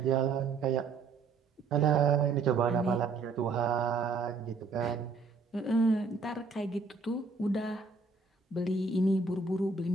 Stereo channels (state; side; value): quieter; left; 4.4 dB